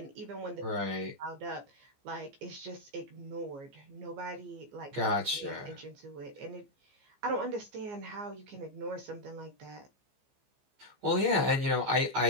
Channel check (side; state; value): left; late; 15 ms